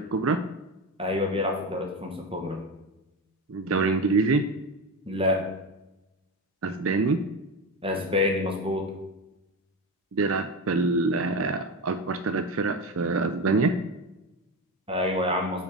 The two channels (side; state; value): both; normal; correlation 0.20